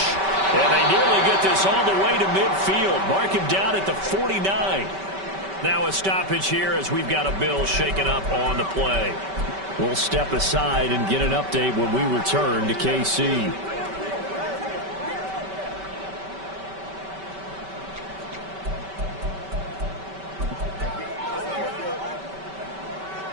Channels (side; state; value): left; late; 5.2 ms